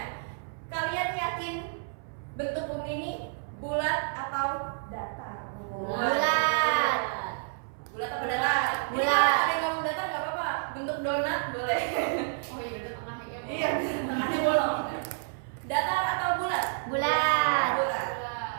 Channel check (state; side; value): silent; left; 58 dB below the other